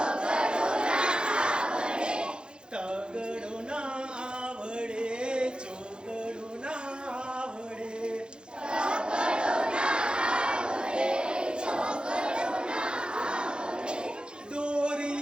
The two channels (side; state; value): left; late; 0.050 ms